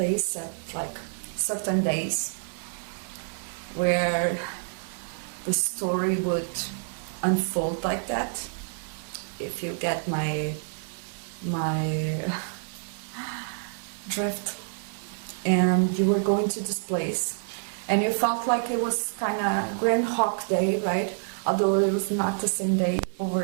at like certain days where the story would unfold like that, if you get my drift. And you were going to this place and you felt like it was kind of Groundhog Day, right? Although it was not the same day over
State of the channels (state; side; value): silent; left; digital silence